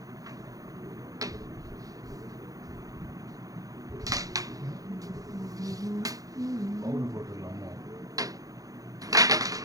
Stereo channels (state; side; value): late; left; 0.17 ms